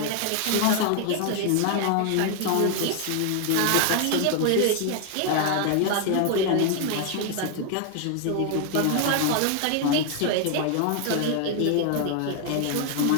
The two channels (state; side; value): different; both; correlation 0.00